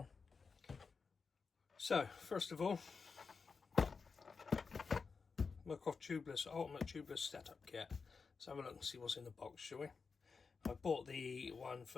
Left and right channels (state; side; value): quieter; right; 5.0 dB